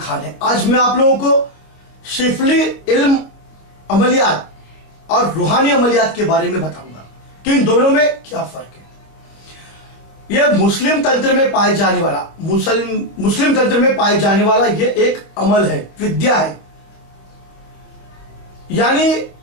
है। आज मैं आप लोगों को शिफली इल्म अमलियात और रूहानी अमलियात के बारे में बताऊंगा कि इन दोनों में क्या फर्क है। यह मुस्लिम तंत्र में पाए जाने वाला मुस्लिम तंत्र में पाए जाने वाला यह एक अमल है, विद्या है। यानी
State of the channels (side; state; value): right; late; 26 ms